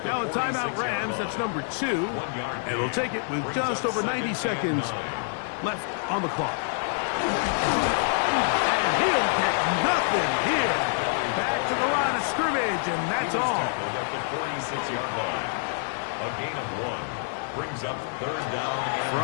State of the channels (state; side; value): silent; right; digital silence